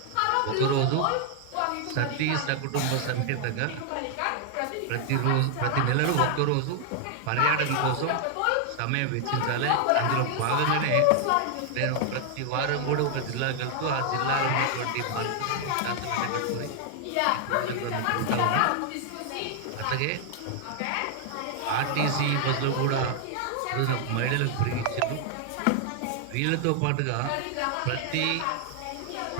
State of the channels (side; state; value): both; different; correlation 0.00